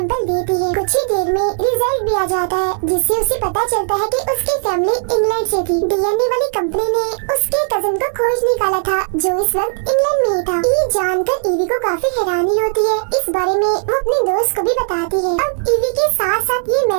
देती है। कुछ ही देर में रिजल्ट भी आ जाता है, जिससे उसे पता चलता है कि उसकी फैमिली इंग्लैंड से थी। DNA वाली कंपनी ने उसके कजन को खोज निकाला था जो इस वक्त इंग्लैंड में ही था। ये जानकर ईवी को काफी हैरानी होती है। इस बारे में वो अपने दोस्त को भी बताती है। अब ईवी के साथ साथ ये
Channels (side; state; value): left; silent; digital silence